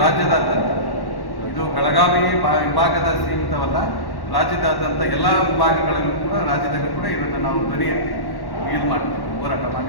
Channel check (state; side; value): late; right; 1.1 ms